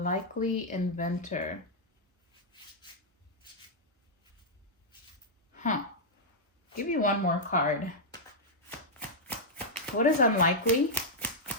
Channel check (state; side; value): normal; both; correlation -0.06